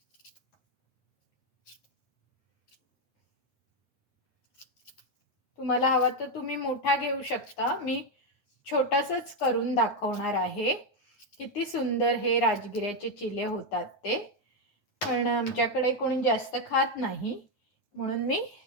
तुम्हाला हवा तर तुम्ही मोठा घेऊ शकता. मी छोटासाच करून दाखवणार आहे. किती सुंदर हे राजगिऱ्याचे चिले होतात ते. पण आमच्याकडे कोणी जास्त खात नाही, म्हणून मी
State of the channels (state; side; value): late; right; 9.7 ms